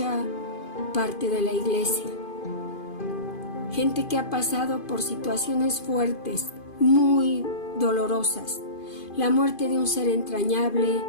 parte de la iglesia. Gente que ha pasado por situaciones fuertes, muy dolorosas. La muerte de un ser entrañable,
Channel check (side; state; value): right; late; 2.5 ms